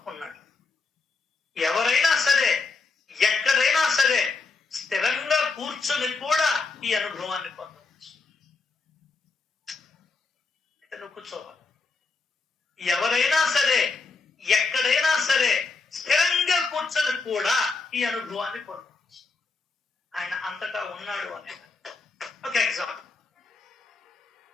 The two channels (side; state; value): right; quieter; 4.1 dB